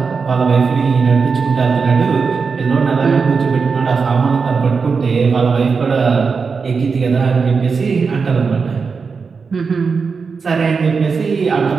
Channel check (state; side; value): quieter; left; 5.2 dB